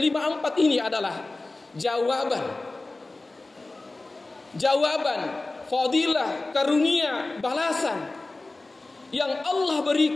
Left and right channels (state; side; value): quieter; right; 3.1 dB